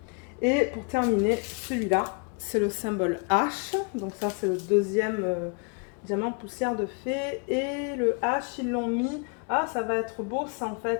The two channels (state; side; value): quieter; right; 34.2 dB